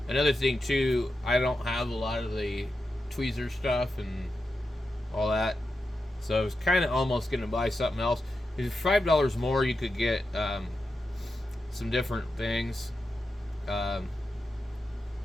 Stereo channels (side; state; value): both; normal; correlation 0.89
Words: another thing too, I don't have a lot of the tweezer stuff and all that, so I was kind of almost gonna buy something else. If $5 more, you could get some different things.